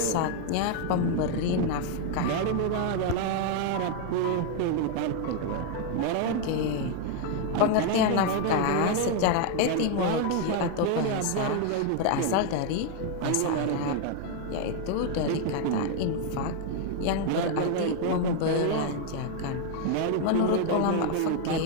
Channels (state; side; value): different; both; correlation 0.01